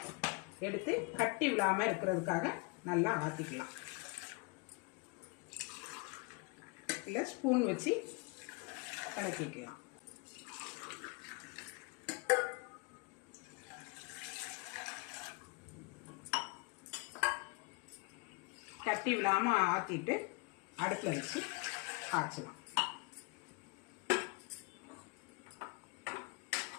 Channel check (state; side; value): quieter; right; 28.6 dB